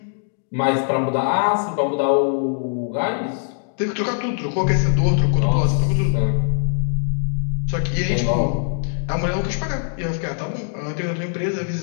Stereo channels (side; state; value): right; silent; digital silence